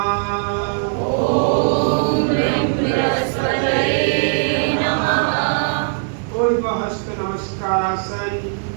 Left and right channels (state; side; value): silent; left; 64 dB below the other